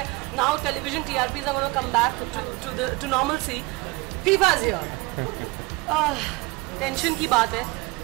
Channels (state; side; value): quieter; left; 23.8 dB